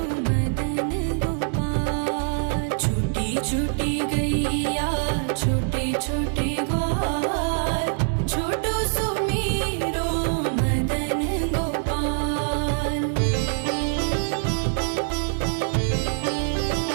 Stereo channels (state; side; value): silent; left; 60 dB below the other